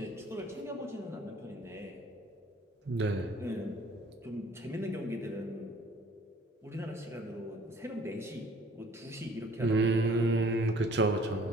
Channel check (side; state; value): both; normal; correlation 0.54